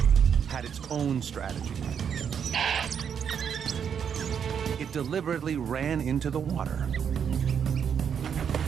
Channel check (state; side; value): quieter; left; 7.6 dB